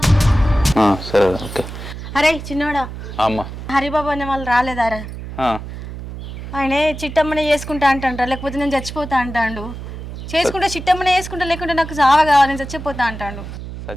సరే ఓకే. అరే చిన్నోడా, అమ్మ హరిబాబు అనే వాళ్ళు రాలేదారా? ఆయనే చిట్టమ్మనే చేసుకుంటా అంటాండ్రా, లేకపోతే నేను చచ్చిపోతా అంటాండు. చేసుకుంటే చిట్టమ్మనే చేసుకుంటా, లేకుంటే నాకు చావ కావాలి, నేను చచ్చిపోతా అంటాండు.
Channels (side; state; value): right; noise; hum, 10 dB below the sound